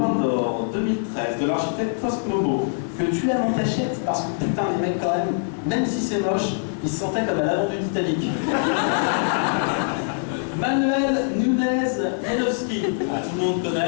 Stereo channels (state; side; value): silent; right; digital silence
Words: d'or 2013 de l'architecte Cosmobo, que tu aimes en cachette parce que putain les mecs quand même si c'est moche, ils se sentaient comme à l'avant du Titanic. Manuel Nunez-Janowski, tout le monde